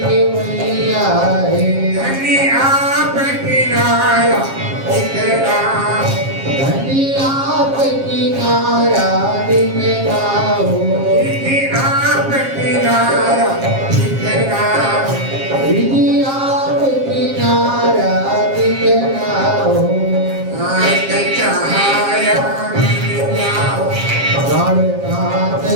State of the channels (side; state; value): left; late; 7.4 ms